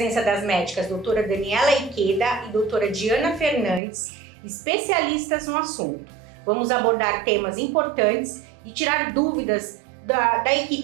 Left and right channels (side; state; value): left; drops out; at 3.8 s